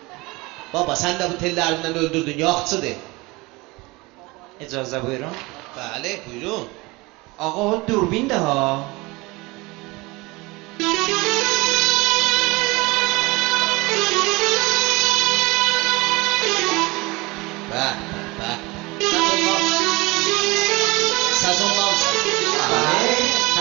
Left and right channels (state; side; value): quieter; left; 23.5 dB